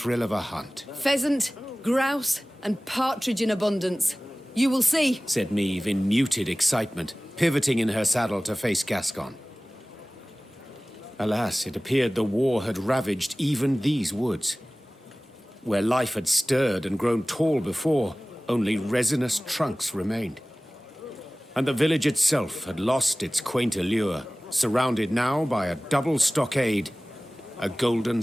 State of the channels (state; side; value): normal; both; correlation 0.98